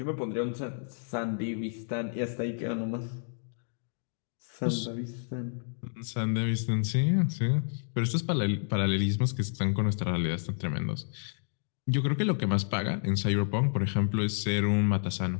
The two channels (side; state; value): right; silent; digital silence